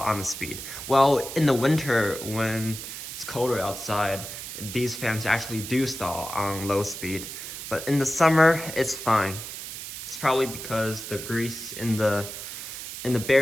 on the speed. Well, in the winter when it's colder outside, these fans actually do stall on low speed. But in the summer, it's fine. It's probably because the grease in the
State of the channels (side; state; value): right; noise; hiss, 9 dB below the sound